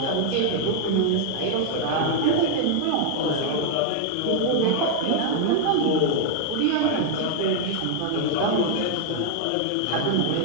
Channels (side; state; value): both; different; correlation 0.00